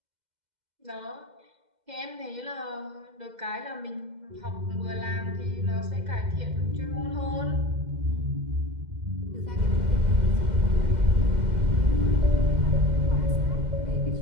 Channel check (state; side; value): late; left; 2.0 ms